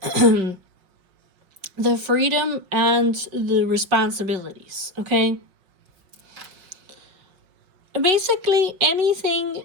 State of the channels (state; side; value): late; left; 5.6 ms